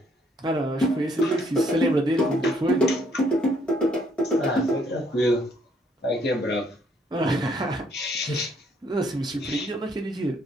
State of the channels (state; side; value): normal; both; correlation 0.68